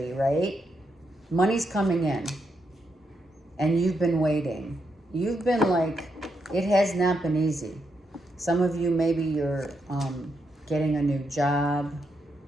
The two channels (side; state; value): both; normal; correlation 0.81